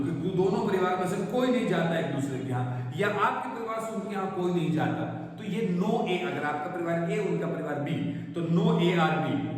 कि दोनों परिवार में से कोई नहीं जाता एक दूसरे के यहाँ, या आपके परिवार से उनके यहाँ कोई नहीं जाता, तो ये नो ए, अगर आपका परिवार ए उनका परिवार बी, तो नो ए आर बी,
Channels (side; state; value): both; identical; correlation 1.00